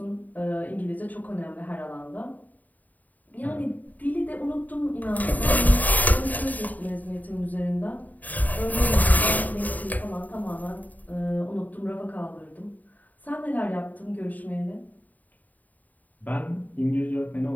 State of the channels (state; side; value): late; right; 0.078 ms